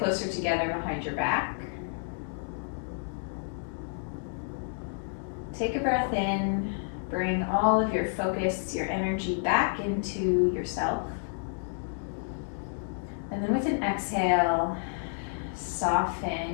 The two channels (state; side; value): silent; right; 58 dB below the other